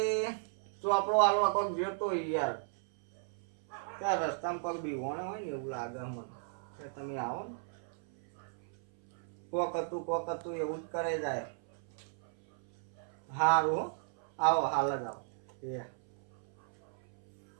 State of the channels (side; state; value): left; silent; 54 dB below the other